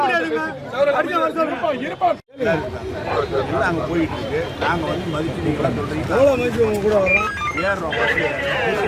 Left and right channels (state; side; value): identical; both; correlation 1.00